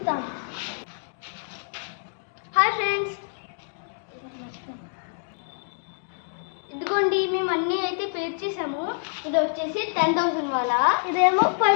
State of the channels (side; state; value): right; silent; digital silence